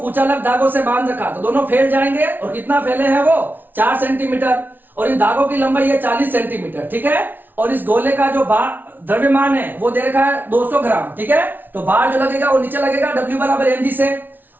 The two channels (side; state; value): left; late; 0.089 ms